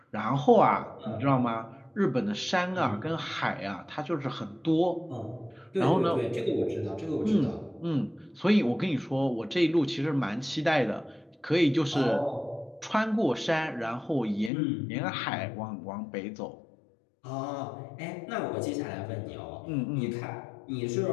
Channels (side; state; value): right; drops out; at 14.5 s